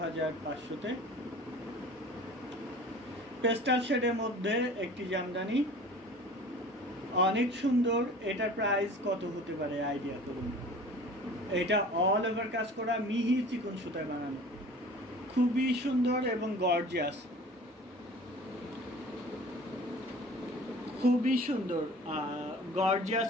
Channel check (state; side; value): normal; both; correlation 0.44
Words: পেস্টাল শেডের মধ্যে একটি জামদানি, অনেক সুন্দর। এটার প্রাইস কত হতে পারে আইডিয়া করুন। এটা অল ওভার কাজ করা মিহি চিকন সুতায় বানানো, খুবই সুন্দর এবং গর্জিয়াস, খুবই সুন্দর গর্জিয়াস